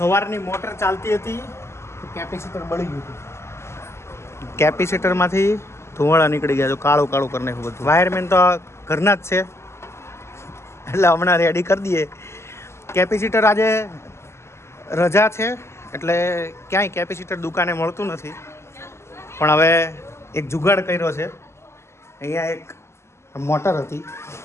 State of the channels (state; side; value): late; right; 0.13 ms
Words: મોટર ચાલતી હતી કેપેસિટર બળી ગયું હતું કેપેસિટરમાંથી ધુવાળા નીકળી ગયા તો કાળું કાળું કરી નાખ્યું બધું વાયરમેન તો ઘરના જ છે એટલે હમણાં રેડી કરી દઈએ કેપેસિટર આજે રજા છે એટલે ક્યાંય કેપેસિટર દુકાને મળતું નથી પણ હવે એક જુગાડ કર્યો છે અહીંયા એક મોટર હતી